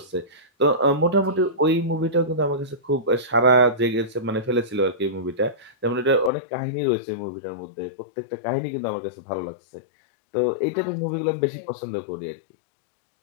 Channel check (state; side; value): drops out; right; at 6.3 s